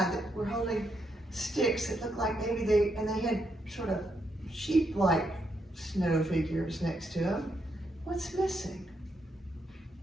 that were holding sticks that looked like maybe they had sort of sheep-like snow figures next to them. What's missing?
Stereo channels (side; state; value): both; normal; correlation 0.79